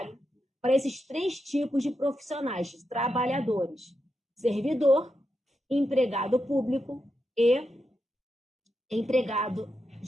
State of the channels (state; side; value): normal; both; correlation 0.86